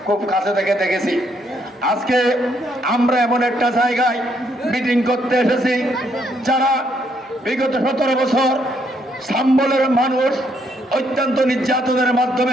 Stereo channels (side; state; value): both; normal; correlation 0.72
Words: খুব কাছে থেকে দেখেছি। আজকে আমরা এমন একটা জায়গায় মিটিং করতে এসেছি যারা বিগত 17 বছর সাম্বলের মানুষ অত্যন্ত নির্যাতনের